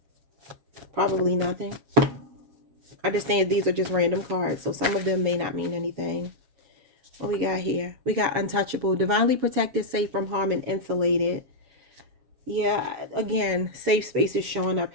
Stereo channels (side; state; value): left; late; 7.3 ms